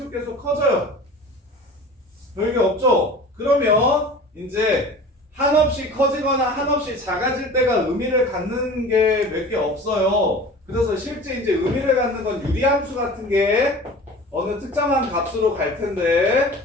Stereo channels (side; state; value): both; normal; correlation 0.40